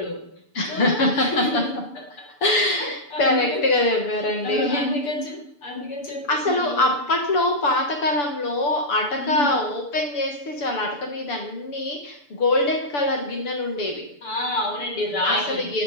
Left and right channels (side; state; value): right; late; 6.9 ms